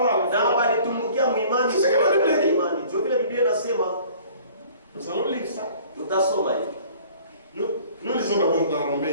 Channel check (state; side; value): inverted; both; correlation -0.51